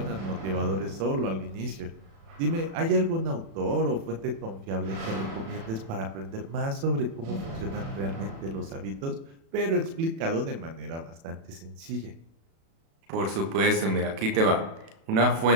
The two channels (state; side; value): late; left; 36 ms